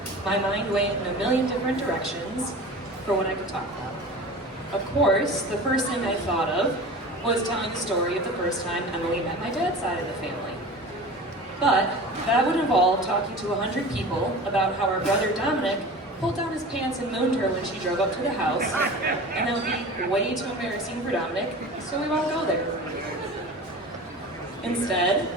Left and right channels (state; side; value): normal; both; correlation 0.36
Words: my mind went in a million different directions for what I could talk about. Of course, the first thing I thought of was telling the story of the first time Emily met my dad's side of the family. But that would involve talking to 100 people about how our brother Dominic pulled down his pants and mooned her when she drove up to the house, and that would be way too embarrassing for Dominic, so we won't go there. Instead,